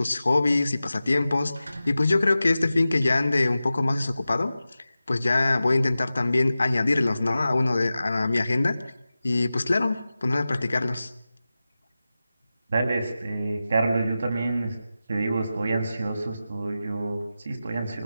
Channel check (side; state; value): both; inverted; correlation -0.94